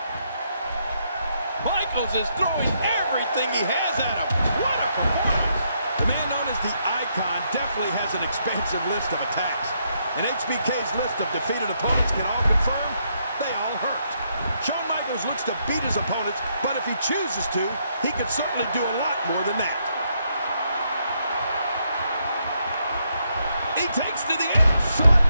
Michaels is throwing everything he has at him. What a performance. The man known as the Icon definitely has an expansive list of attacks. And HBK's list of defeated opponents can all confirm they all hurt. Shawn Michaels looks to beat his opponents, but if he chooses to, he could certainly do a lot more than that. He takes to the edge. Shawn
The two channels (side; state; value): both; inverted; correlation -0.76